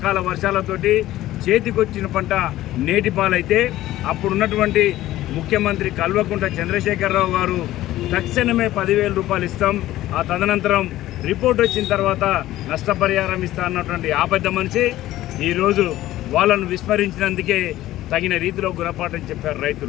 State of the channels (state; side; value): quieter; right; 15.0 dB